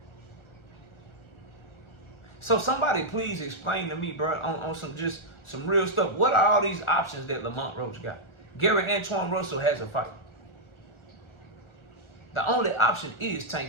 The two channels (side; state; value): right; late; 1.4 ms